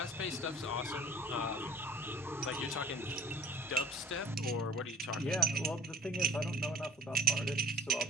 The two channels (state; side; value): normal; both; correlation 0.45